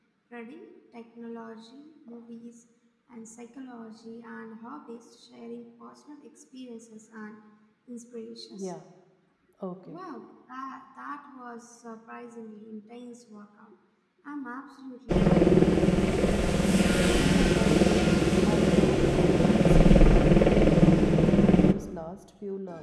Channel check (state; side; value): identical; both; correlation 1.00